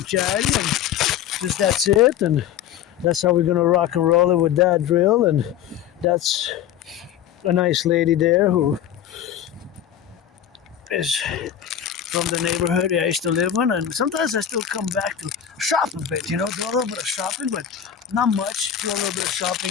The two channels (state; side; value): quieter; right; 9.9 dB